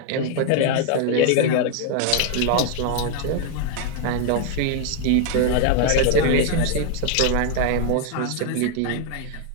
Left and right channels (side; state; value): both; different; correlation 0.00